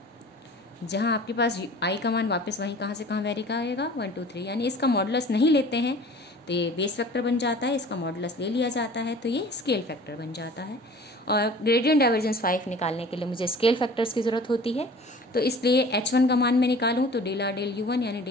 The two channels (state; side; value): normal; both; correlation 0.45